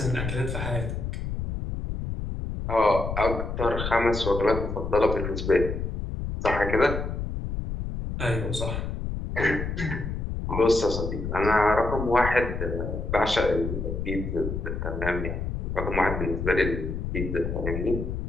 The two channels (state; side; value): noise; left; rumble, 4 dB below the sound